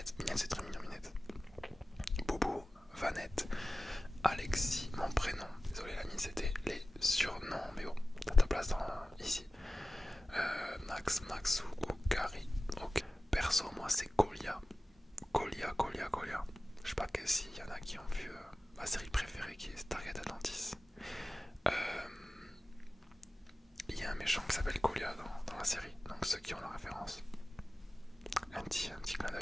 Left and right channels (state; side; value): normal; both; correlation 0.96